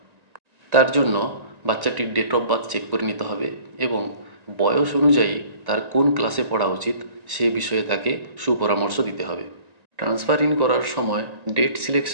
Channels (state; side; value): late; left; 1.9 ms